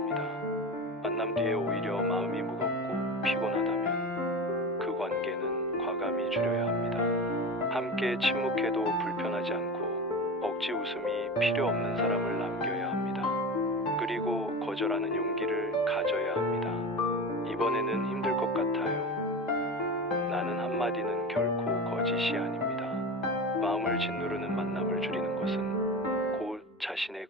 만남 뒤에 오히려 마음이 무겁고 피곤하다면 그 관계는 과감히 줄여야 합니다. 함께 침묵해도 불편하지 않고 억지 웃음이 필요 없는 사람을 남겨야 합니다. 그리고 거절하는 용기를 가져야 합니다. 이번에는 힘들 것 같아요. 나는 한마디는 결코 거짓이 아닙니다. 마음을 짓누르는 만남을 줄이는 것은 곧 자신의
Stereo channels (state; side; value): normal; both; correlation 0.28